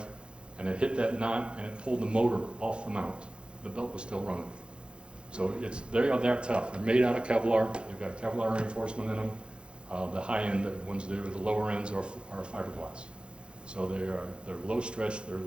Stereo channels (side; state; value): left; late; 0.055 ms